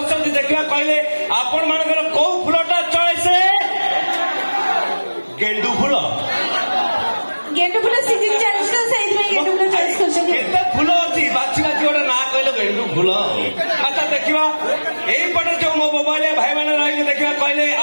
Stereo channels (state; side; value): inverted; both; correlation -1.00